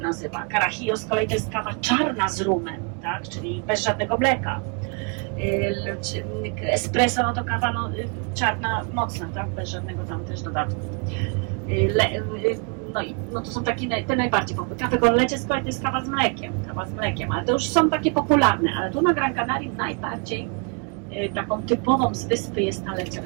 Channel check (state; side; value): quieter; left; 36.1 dB